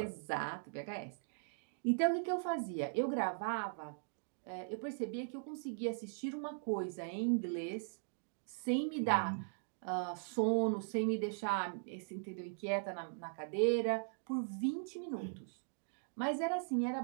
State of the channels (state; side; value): silent; left; digital silence